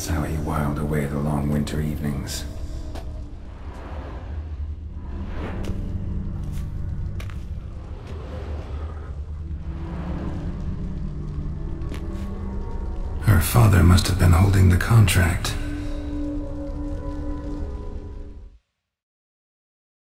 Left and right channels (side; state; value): both; identical; correlation 1.00